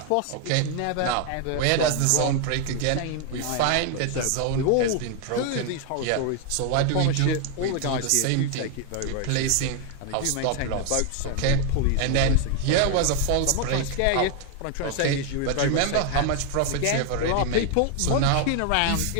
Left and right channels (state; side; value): different; both; correlation 0.01